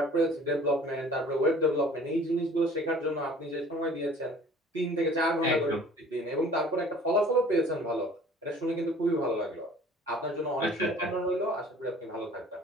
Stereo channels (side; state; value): both; normal; correlation 0.50